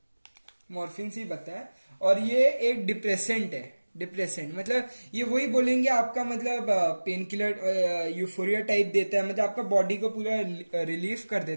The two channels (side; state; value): both; inverted; correlation -1.00